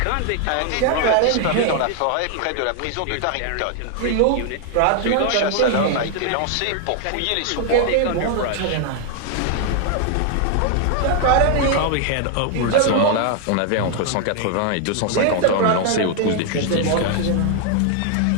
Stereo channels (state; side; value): different; both; correlation 0.00